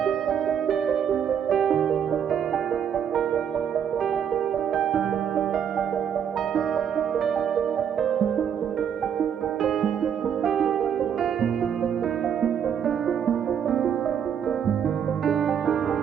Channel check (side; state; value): left; quieter; 8.4 dB